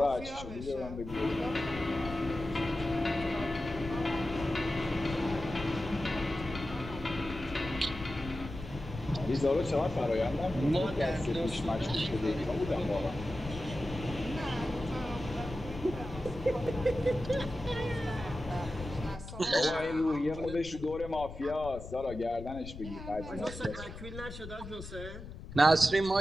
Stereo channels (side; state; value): left; noise; rumble, 11 dB below the sound